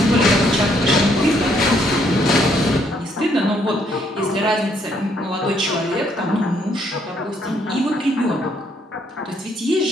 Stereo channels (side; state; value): both; normal; correlation 0.70